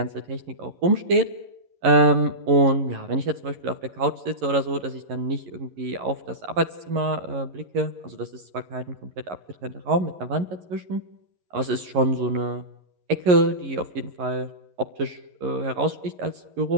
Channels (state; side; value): late; left; 11 ms